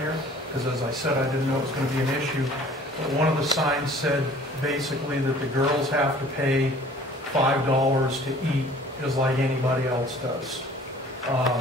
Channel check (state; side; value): normal; both; correlation 0.51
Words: because as I said, I didn't know it was going to be an issue. But one of the signs said basically that the girls have to pay $5 to eat just like anybody else does.